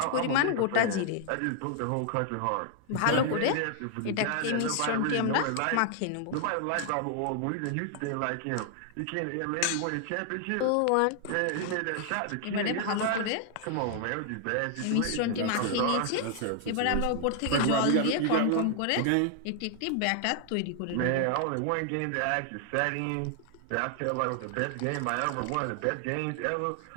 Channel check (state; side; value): different; both; correlation 0.00